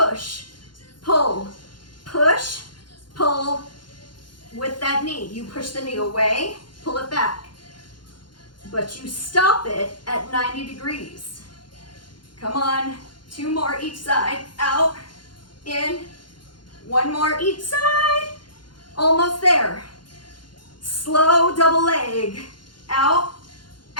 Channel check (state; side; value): late; right; 0.71 ms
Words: pull, push, pull. With that knee, you push the knee away, pull it back. But you stop it at 90 degrees. Come on, 2 more each side, out, in, 1 more each side, almost there. Slow double leg, out,